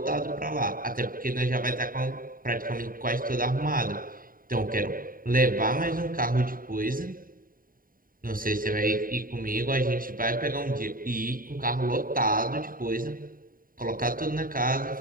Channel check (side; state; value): left; late; 0.41 ms